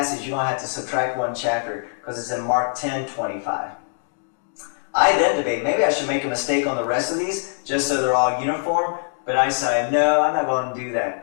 you're going to have to subtract one chapter because it's in Mark 10:25. I then debate, maybe I should make a mistake on the rest of these just so they're all uniform, but I decided, no, I'm not going to do that.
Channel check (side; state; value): right; silent; digital silence